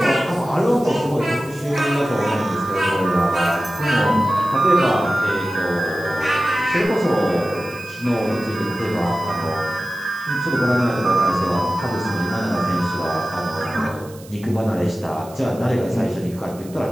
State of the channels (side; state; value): right; noise; hiss, 22 dB below the sound